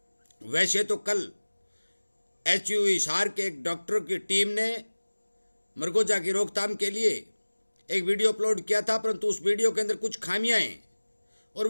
वैसे तो कल HU हिसार के एक डॉक्टर की टीम ने मरगोजा की रोकथाम के लिए एक वीडियो अपलोड किया था, परंतु उस वीडियो के अंदर कुछ खामियां हैं और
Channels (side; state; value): both; inverted; correlation -1.00